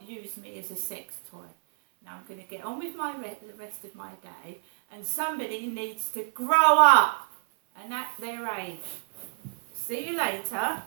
use me as a sex toy. Now I'm going to get on with the rest of my day, and somebody needs to grow up and at their age. See you later.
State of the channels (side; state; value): left; silent; 59 dB below the other